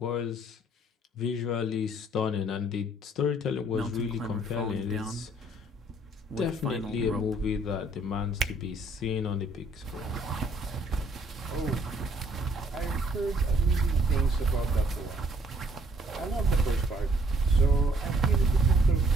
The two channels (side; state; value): both; normal; correlation 0.63